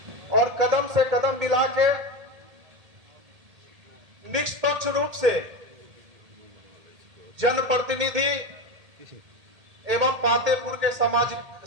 और कदम से कदम मिला के निष्पक्ष रूप से जनप्रतिनिधि एवं पातेपुर के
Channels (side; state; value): left; late; 1.8 ms